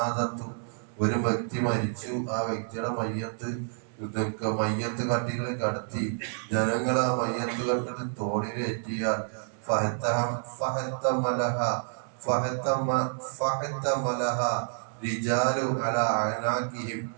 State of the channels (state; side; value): silent; left; 59 dB below the other